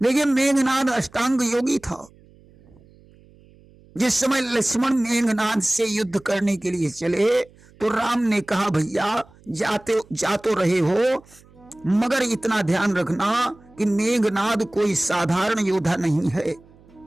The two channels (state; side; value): noise; right; hum, 27 dB below the sound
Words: लेकिन मेघनाद अष्टांग योगी था। जिस समय लक्ष्मण मेघनाद से युद्ध करने के लिए चले तो राम ने कहा, भैया जा तो रहे हो, मगर इतना ध्यान रखना कि मेघनाद कोई साधारण योद्धा नहीं है,